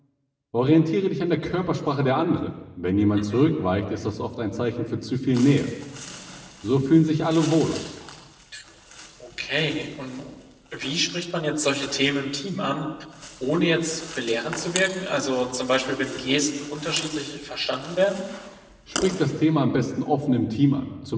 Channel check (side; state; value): both; identical; correlation 1.00